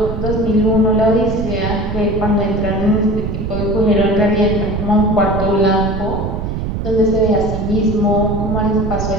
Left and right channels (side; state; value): right; noise; rumble, 3 dB below the sound